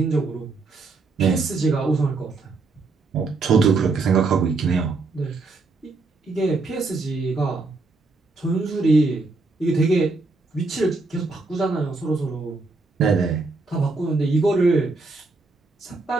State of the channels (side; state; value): left; quieter; 3.7 dB